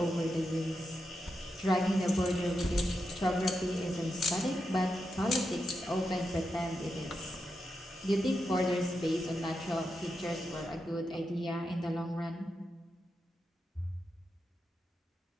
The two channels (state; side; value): normal; both; correlation 0.87